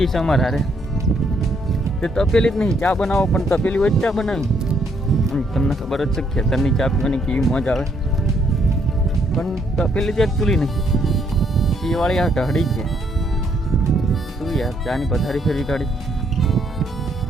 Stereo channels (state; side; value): normal; both; correlation 0.71